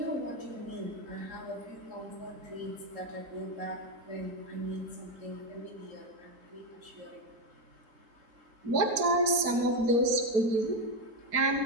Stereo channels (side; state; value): left; late; 4.5 ms